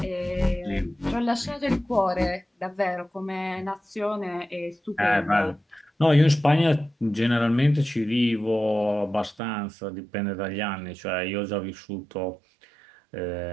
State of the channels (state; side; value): drops out; left; at 9.3 s